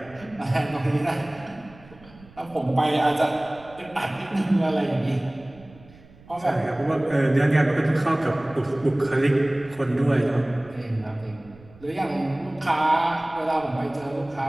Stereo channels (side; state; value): right; noise; rumble, 23 dB below the sound